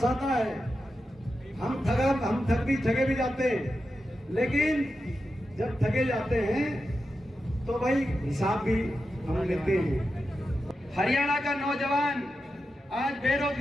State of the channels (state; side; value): normal; both; correlation 0.89